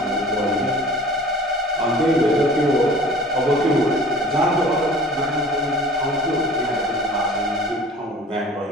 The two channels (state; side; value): normal; both; correlation 0.46